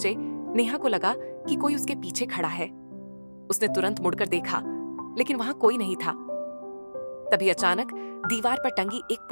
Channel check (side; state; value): both; inverted; correlation -1.00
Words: नेहा को लगा कि कोई उसके पीछे खड़ा है। उसने तुरंत मुड़कर देखा, लेकिन वहां कोई नहीं था। तभी अचानक दीवार पर टंगी एक